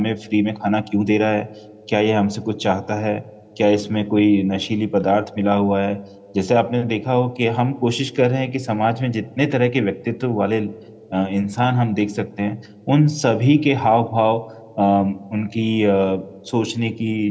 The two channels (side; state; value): both; identical; correlation 1.00